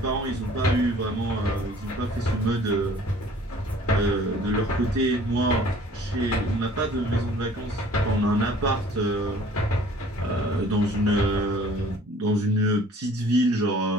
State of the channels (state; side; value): normal; both; correlation 0.52